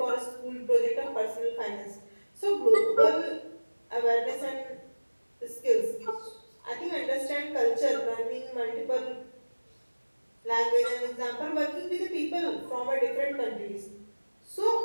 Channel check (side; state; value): both; inverted; correlation -1.00